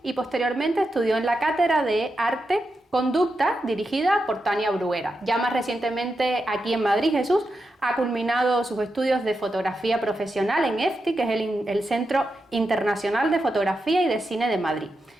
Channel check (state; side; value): normal; both; correlation 0.87